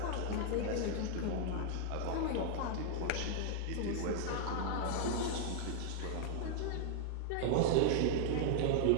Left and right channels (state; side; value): different; both; correlation 0.00